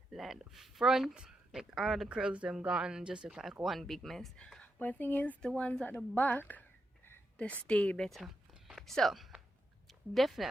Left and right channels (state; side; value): normal; both; correlation 0.85